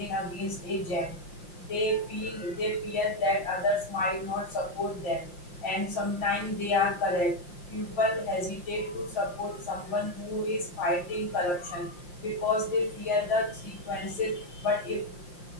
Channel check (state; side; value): late; right; 5.7 ms